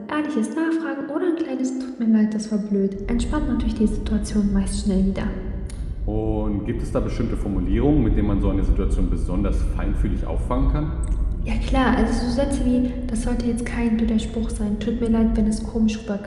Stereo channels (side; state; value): both; identical; correlation 1.00